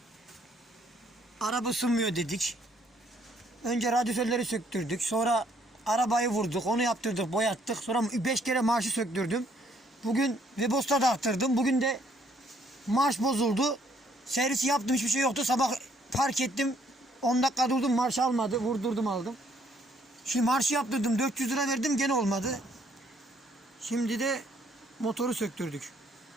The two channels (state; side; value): normal; both; correlation 0.66